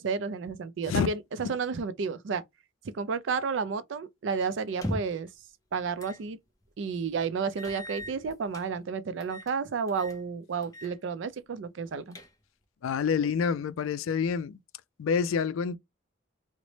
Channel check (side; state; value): both; normal; correlation -0.01